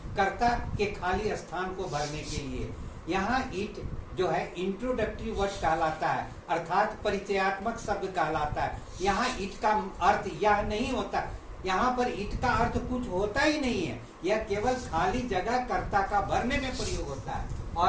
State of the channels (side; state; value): both; identical; correlation 1.00